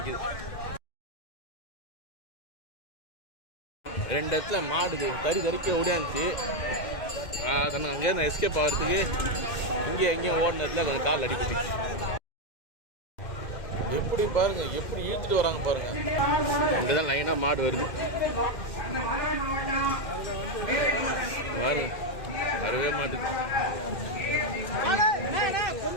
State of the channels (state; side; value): late; right; 2.1 ms